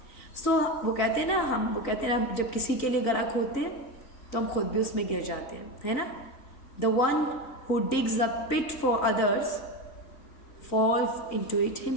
वो कहते हैं ना, जब किसी के लिए गला खोदते हैं तो हम खुद भी उसमें गिर जाते हैं, है ना. The one who digs a pit for others falls into it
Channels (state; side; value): late; right; 3.9 ms